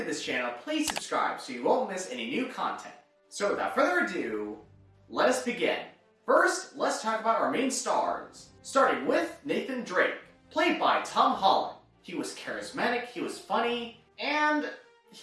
this channel, please subscribe so you won't miss any new content. So without further ado, let us begin. First, let's talk about our main stars, starting with Nathan Drake, played by Tom Holland. He was charismatic, he was funny, and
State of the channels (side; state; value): both; identical; correlation 1.00